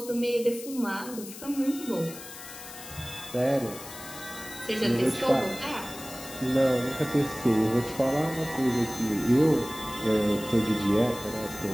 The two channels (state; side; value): noise; left; hiss, 13 dB below the sound